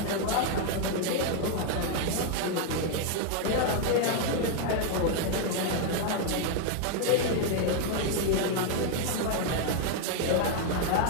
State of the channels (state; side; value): different; both; correlation 0.01